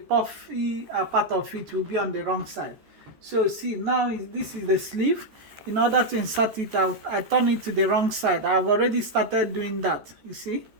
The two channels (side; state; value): left; late; 13 ms